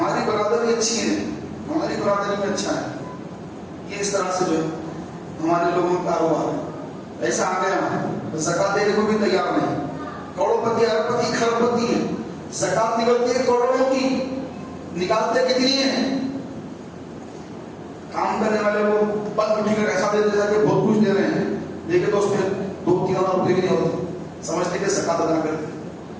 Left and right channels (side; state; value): both; identical; correlation 1.00